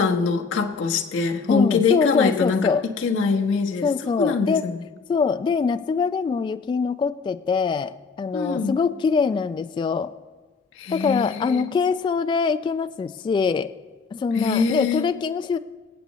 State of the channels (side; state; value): right; quieter; 4.9 dB